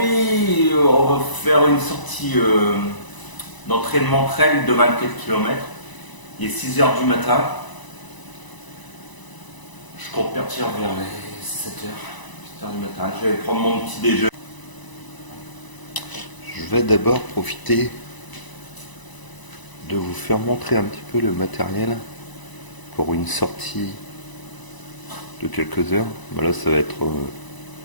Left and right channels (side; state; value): right; late; 1.0 ms